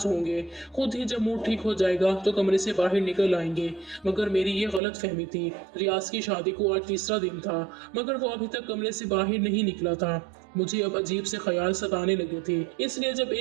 होंगे, खुद ही जब मूड ठीक हो जाएगा तो कमरे से बाहर निकल आएंगे, मगर मेरी ये गलत फहमी थी। रियाज की शादी को आज तीसरा दिन था, मगर वो अभी तक कमरे से बाहर नहीं निकला था। मुझे अब अजीब से ख्याल सताने लगे थे, इसलिए जब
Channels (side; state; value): left; drops out; at 4.8 s